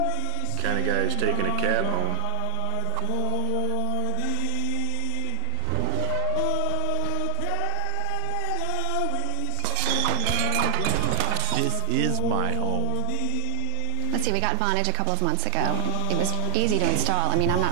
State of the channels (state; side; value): different; both; correlation 0.01